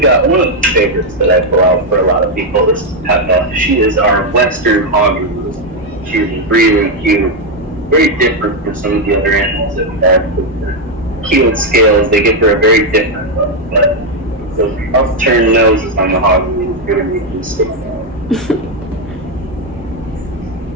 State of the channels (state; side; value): normal; both; correlation 0.03